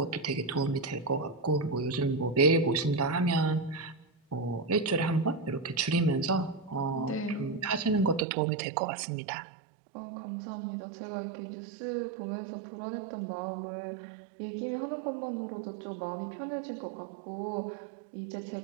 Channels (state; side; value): drops out; left; at 8.2 s